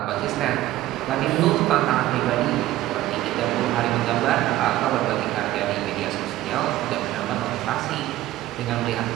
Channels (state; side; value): quieter; left; 15.3 dB